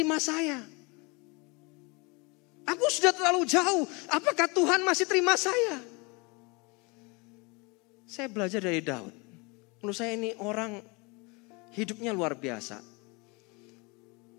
saya? Aku sudah terlalu jauh. Apakah Tuhan masih terima saya? Saya belajar dari Daud. Menurut saya ini orang hidupnya luar biasa.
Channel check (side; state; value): right; quieter; 28.3 dB